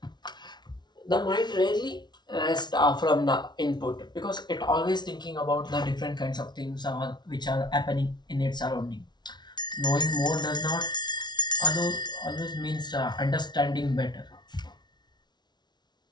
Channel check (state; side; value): late; right; 0.20 ms